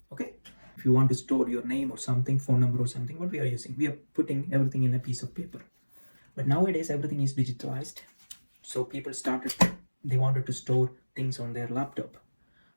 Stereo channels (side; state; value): both; inverted; correlation -1.00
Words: Okay, if you want to store your name or something, phone number or something, what we are using, we are putting everything in a piece of paper. But nowadays everything is digitalized. So people they wanted to store things on their laptop